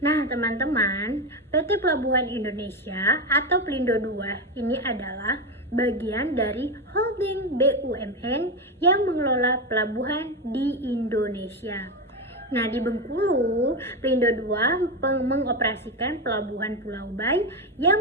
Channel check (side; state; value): both; normal; correlation 0.14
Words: Nah, teman-teman, PT Pelabuhan Indonesia atau Pelindo II ini adalah bagian dari holding BUMN yang mengelola pelabuhan di Indonesia. Nah, di Bengkulu, Pelindo II mengoperasikan pelabuhan Pulau Bay